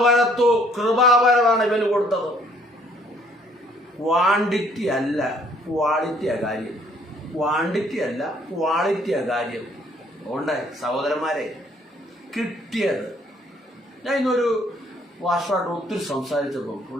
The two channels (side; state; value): both; normal; correlation 0.62